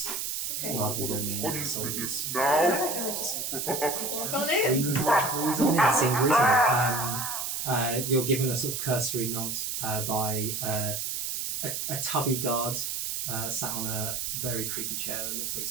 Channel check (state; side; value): noise; right; hiss, 2 dB below the sound